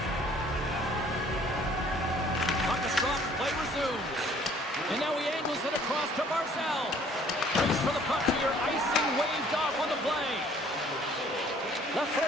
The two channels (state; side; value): normal; both; correlation 0.57